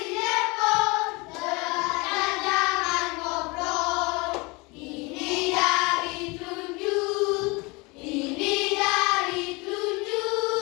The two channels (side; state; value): right; quieter; 26.5 dB